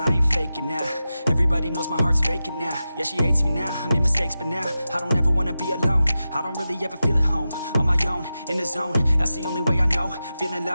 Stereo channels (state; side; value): inverted; both; correlation -0.93